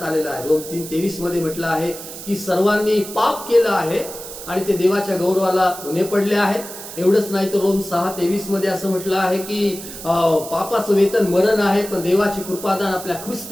आलेला आहे. रोम 3:23 मध्ये म्हटलं आहे की सर्वांनी पाप केलं आहे आणि ते देवाच्या गौरवाला उणे पडले आहेत. एवढंच नाही तर रोम 6:23 मध्ये असं म्हटलं आहे की पापाचं वेतन मरण आहे, पण देवाची कृपादान आपल्या ख्रिस्त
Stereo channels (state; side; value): noise; right; hiss, 12 dB below the sound